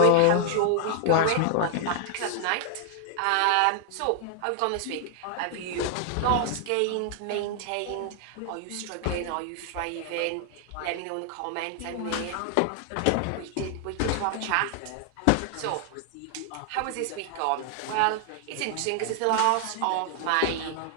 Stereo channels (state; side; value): different; both; correlation 0.00